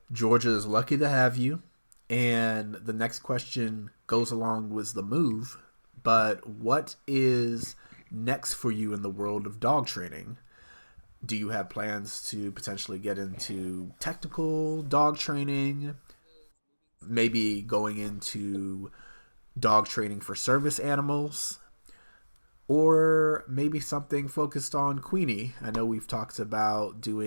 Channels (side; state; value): both; inverted; correlation -1.00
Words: Georgia is lucky to have you. And the next question goes along with the move. But what is next for you in the world of dog training? Do you have plans to potentially get into technical dog training? Maybe going into dog training for service animals? Or maybe something focused on Queenie. I know we've talked about